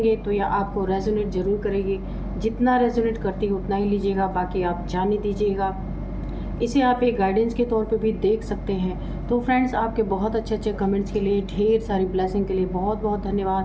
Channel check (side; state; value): both; identical; correlation 1.00